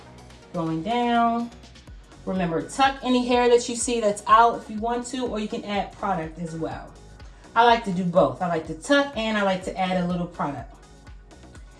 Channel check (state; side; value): identical; both; correlation 1.00